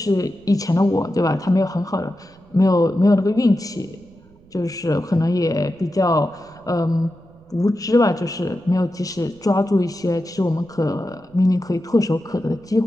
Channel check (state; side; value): noise; right; rumble, 28 dB below the sound